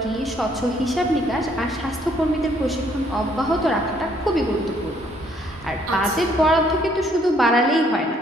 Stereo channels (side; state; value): both; normal; correlation 0.66